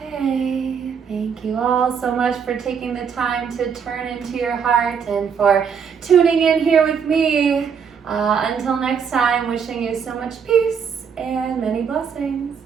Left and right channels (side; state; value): left; quieter; 6.8 dB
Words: Okay, thank you all so much for taking the time to turn into your heart and for tuning in here with me. Until next time, wishing you so much peace and many blessings.